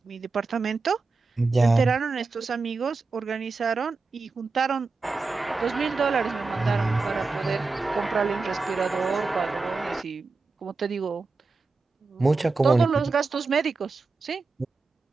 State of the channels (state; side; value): quieter; left; 4.0 dB